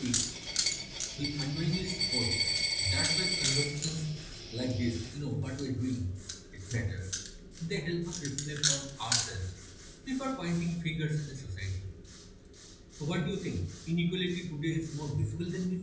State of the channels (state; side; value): identical; both; correlation 1.00